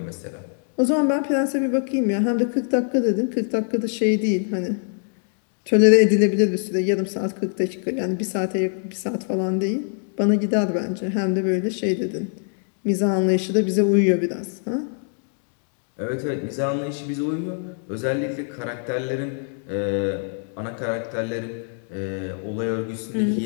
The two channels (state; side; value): silent; right; 55 dB below the other